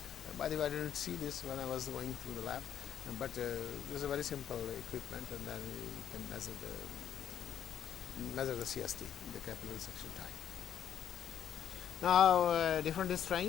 By the way, I didn't see this when I was going through the lab, but this is a very simple equipment, and then you can measure the CST, the capillary suction time. Now different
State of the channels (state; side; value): quieter; right; 9.4 dB